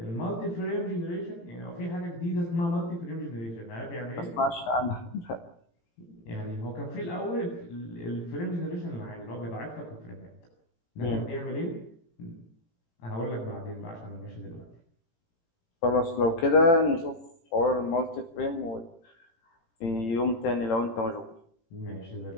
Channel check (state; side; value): late; right; 18 ms